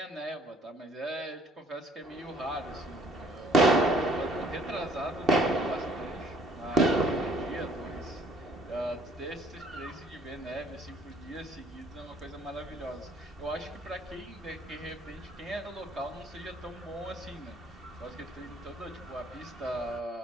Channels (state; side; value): normal; both; correlation 0.60